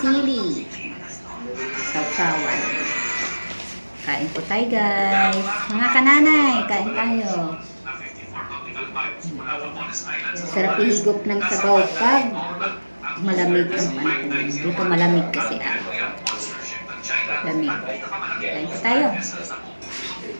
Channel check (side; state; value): both; inverted; correlation -1.00